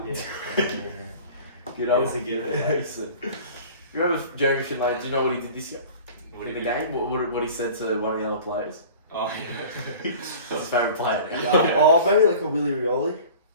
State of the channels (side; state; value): both; inverted; correlation -0.42